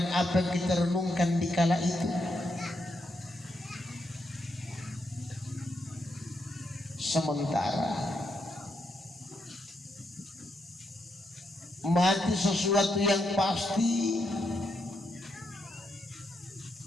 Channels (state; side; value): normal; both; correlation 0.80